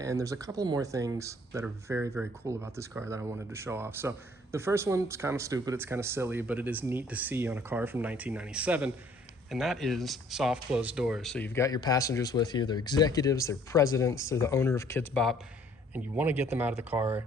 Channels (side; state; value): both; normal; correlation 0.59